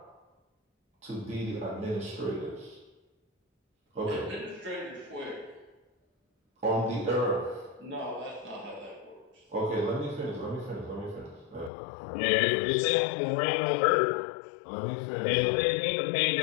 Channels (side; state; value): right; drops out; at 11.7 s